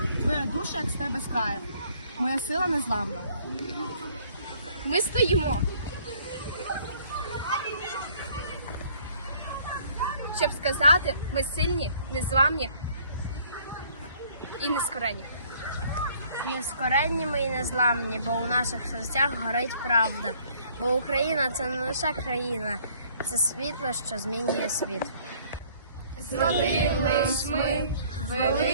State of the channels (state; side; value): inverted; both; correlation -0.59